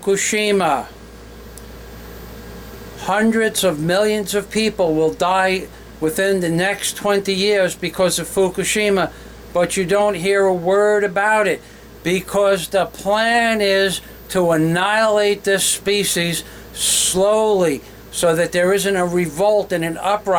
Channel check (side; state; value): both; identical; correlation 1.00